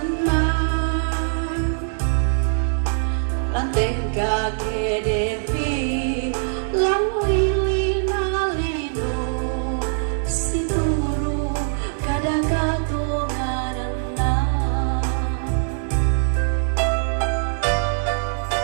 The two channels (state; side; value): silent; left; 64 dB below the other